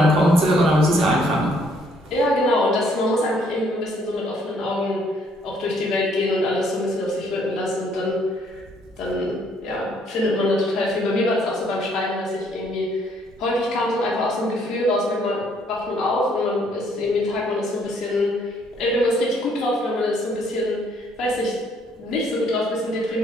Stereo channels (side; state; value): both; normal; correlation 0.66